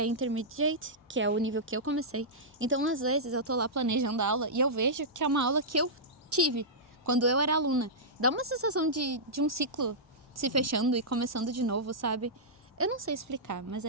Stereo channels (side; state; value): both; normal; correlation -0.13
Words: que é o nível que eu comecei. Então, às vezes, eu tô lá planejando a aula e eu vejo que é uma aula que eu tive quando eu era aluna. Dá uma sensação de um ciclo se fechando e começando de novo, sabe? Eu não sei explicar, mas